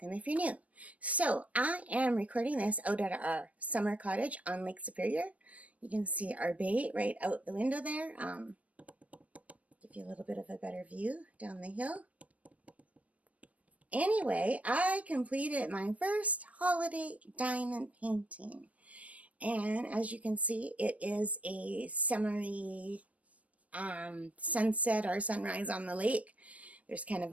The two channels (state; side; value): late; left; 0.067 ms